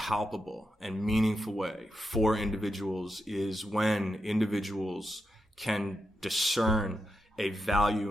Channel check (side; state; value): both; normal; correlation 0.86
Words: and meaningful way for individuals is when individuals can discern a